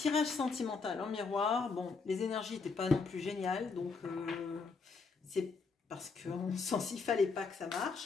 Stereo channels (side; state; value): right; quieter; 4.7 dB